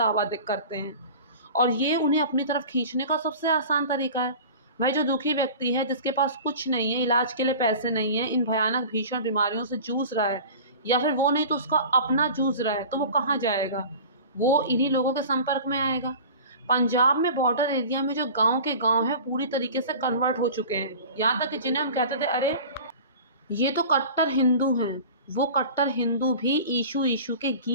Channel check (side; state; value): both; inverted; correlation -0.38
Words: करते हैं। और ये उन्हें अपनी तरफ खींचने का सबसे आसान तरीका है। भाई, जो दुखी व्यक्ति है, जिसके पास कुछ नहीं है, इलाज के लिए पैसे नहीं है, इन भयानक भीषण बीमारियों से जूझ रहा है, या फिर वो नहीं तो उसका अपना जूझ रहा है, तो वो कहाँ जाएगा? वो इन्हीं लोगों के संपर्क में आएगा। पंजाब में बॉर्डर एरिया में जो गांव के गांव है, पूरी तरीके से कन्वर्ट हो चुके हैं। यहाँ तक कि जिन्हें हम कहते थे, अरे ये तो कट्टर हिंदू हैं, वो कट्टर हिंदू भी ईशु ईशु के